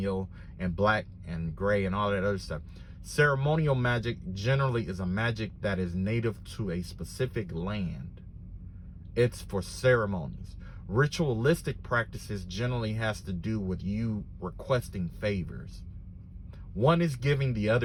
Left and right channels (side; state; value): both; identical; correlation 1.00